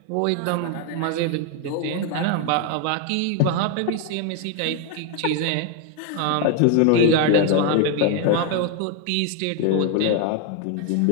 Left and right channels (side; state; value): both; different; correlation 0.01